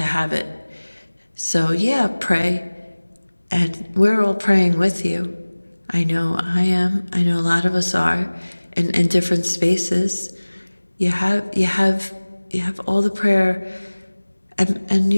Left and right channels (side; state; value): both; inverted; correlation -1.00